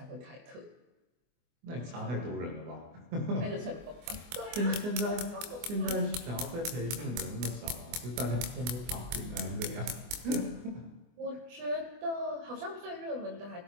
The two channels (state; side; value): late; left; 24 ms